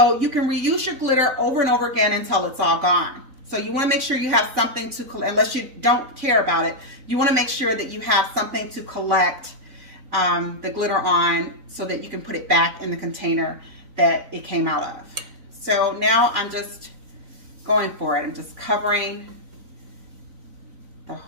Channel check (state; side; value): late; left; 3.5 ms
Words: you can reuse your glitter over and over again until it's all gone. So you want to make sure you have something to collect, unless you don't care about it, you want to make sure that you have something to collect the glitter on so that you can put it back in the container that it came out of. So now I'm just going for it. I'm just covering the